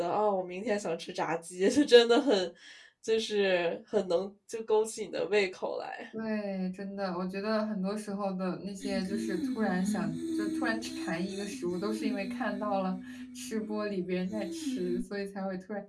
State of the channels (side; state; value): both; identical; correlation 1.00